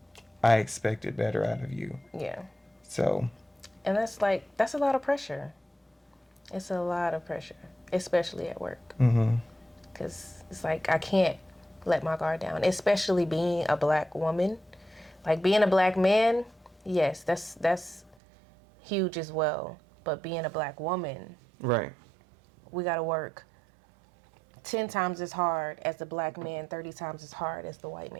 I expected better out of you. Yeah. So. And that's a lot of pressure. It's a lot of pressure, especially at work. Because it's like, I can't let my guard down, especially being a black woman. Like, being a black man, yes, that's huge as well. But being a black woman, right, we got to work 10 times as hard as the black man, 30 times as hard as the white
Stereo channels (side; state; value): left; drops out; at 18.2 s